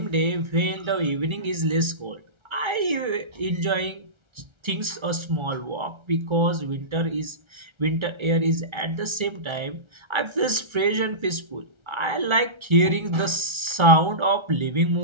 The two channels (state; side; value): late; left; 1.3 ms